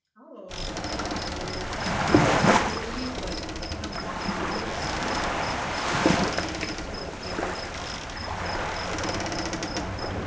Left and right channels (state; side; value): identical; both; correlation 1.00